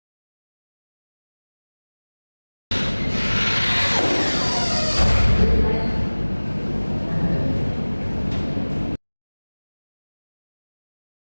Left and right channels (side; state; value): both; inverted; correlation -1.00